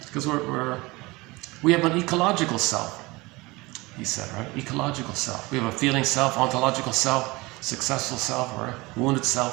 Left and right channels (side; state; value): left; quieter; 22.8 dB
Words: Because we have an ecological self, he said, right? Ecological self. We have a feeling self, ontological self, successful self, or wounded